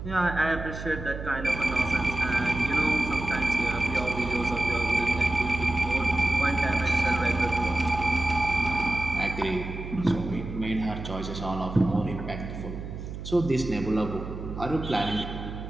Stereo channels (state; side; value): noise; right; hum, 8 dB below the sound